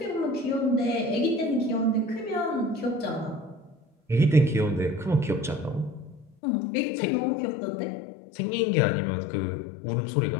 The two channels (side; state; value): right; drops out; at 6.3 s